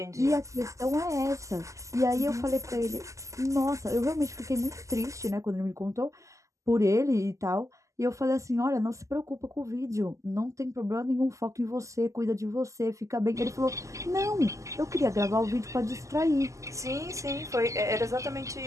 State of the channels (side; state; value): left; late; 0.16 ms